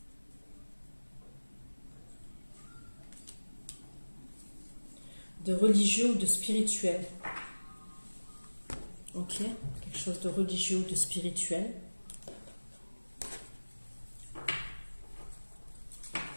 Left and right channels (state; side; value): inverted; both; correlation -1.00